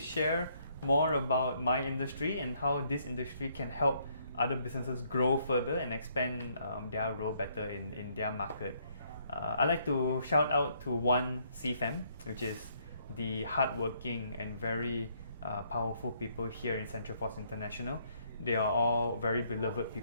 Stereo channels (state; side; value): inverted; both; correlation -0.69